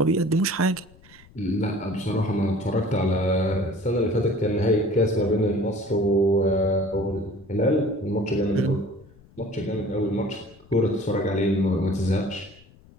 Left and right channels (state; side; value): noise; left; rumble, 26 dB below the sound